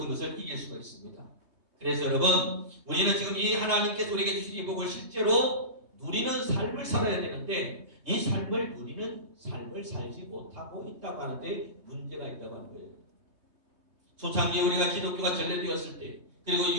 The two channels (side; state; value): left; late; 3.2 ms